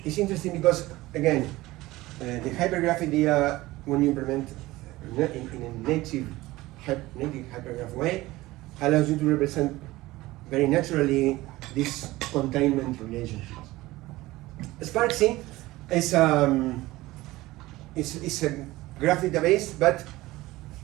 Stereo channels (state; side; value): quieter; left; 18.6 dB